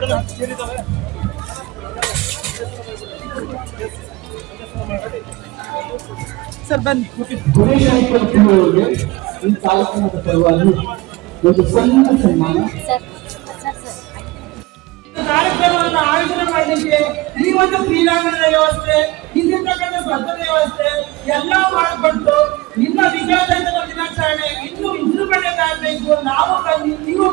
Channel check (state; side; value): quieter; left; 21.3 dB